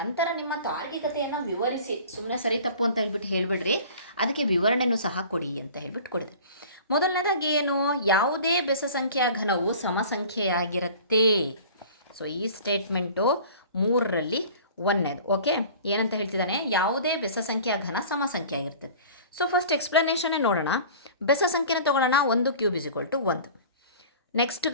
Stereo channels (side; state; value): both; inverted; correlation -0.43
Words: ನಿಮ್ಮ ತಾರ್ಕಿಕತೆಯನ್ನು ವಿವರಿಸಿ. ಸುಮ್ಮನೆ ಸರಿ ತಪ್ಪು ಅಂತ ಹೇಳ್ಬಿಟ್ಟು ಹೇಳಿಬಿಡ್ರಿ, ಅದಕ್ಕೆ ವಿವರಣೆನೂ ಸಹ ಕೊಡಿ ಅಂತ ಹೇಳ್ಬಿಟ್ಟು ಕೊಡಿದೆ. ಮೊದಲನೇದಾಗಿ ಏನು, ಯಾವುದೇ ಬೆಸ ಸಂಖ್ಯೆಯ ಘನವು ಸಮಸಂಖ್ಯೆಯಾಗಿರುತ್ತೆ. ಸೊ ಈ ಸ್ಟೇಟ್ಮೆಂಟು 3ರಲ್ಲಿ 1ನೇದು. ಓಕೆ, ಏನಂತ ಹೇಳ್ತಿದ್ದಾನೆ, ಯಾವುದೇ ಬೆಸ ಸಂಖ್ಯೆಯ ಘನ ಸಮಸಂಖ್ಯೆ ಆಗಿರ್ತದೆ. ಸೊ ಫಸ್ಟ್ ಎಕ್ಸ್ಪ್ಲನೇಷನ್ನೇ ನೋಡೋಣ. ಬೆಸ ಸಂಖ್ಯೆನ ತೊಗೊಳ್ಳೋಣ, 1 ಕ್ಯೂಬ್ = 1. ನೆಕ್ಸ್ಟ್